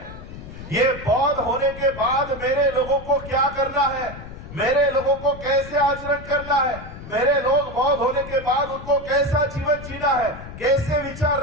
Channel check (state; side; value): noise; left; rumble, 13 dB below the sound